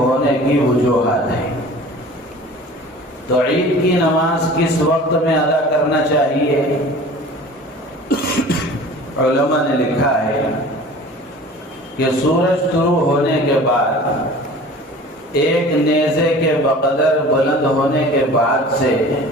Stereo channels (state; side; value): normal; both; correlation 0.43